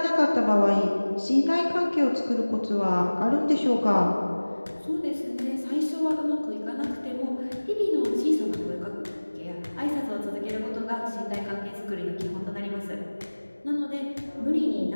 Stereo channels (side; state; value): both; inverted; correlation -1.00